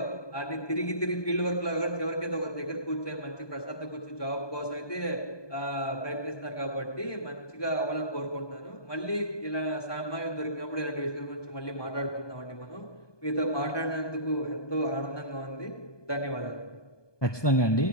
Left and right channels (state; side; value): late; right; 1.2 ms